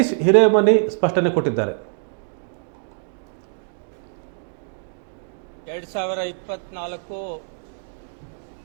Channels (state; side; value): silent; left; digital silence